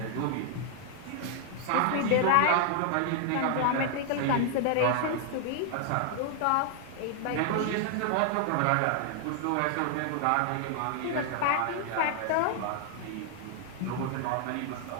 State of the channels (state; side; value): different; both; correlation 0.00